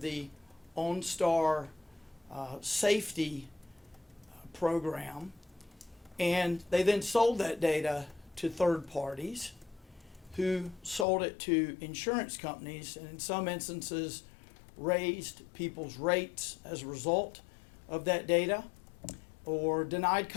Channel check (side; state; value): right; drops out; at 11.1 s